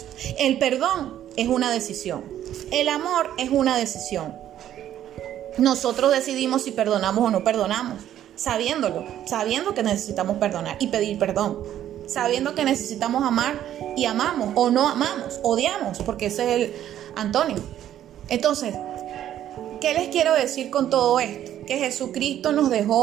El perdón es una decisión. El amor es una decisión. Nosotros decidimos si perdonamos o no perdonamos, sabiendo que necesitamos perdonar y pedir perdón, sabiendo que necesitamos amar y amamos, o no amamos, odiamos, porque ese es el antónimo. Entonces, ¿qué les quiero decir con todo esto? Que Jesucristo nos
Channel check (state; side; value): quieter; left; 11.4 dB